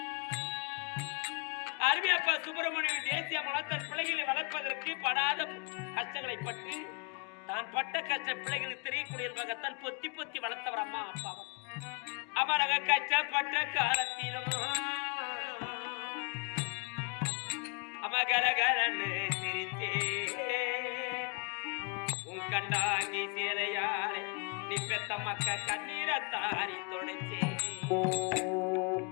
அருமை அப்பா சுப்பிரமணிய தேசிய அம்மா தன் பிள்ளைகளை வளர்ப்பதற்கு படாத கஷ்டங்களை பட்டு தான் பட்ட கஷ்ட பிள்ளைகளுக்கு தெரியக்கூடிய தன் பொத்தி பொத்தி வளர்த்தவர் அம்மா அப்பாவும் அமரக கஷ்டப்பட்ட காலத்திலும் அமகரகரன்னு சிரித்தே உன் கண்டாங்கி சேரையாரே நீ பெத்த மக்க கண்ணீரை தாரி தொடச்சே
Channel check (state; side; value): quieter; right; 34.2 dB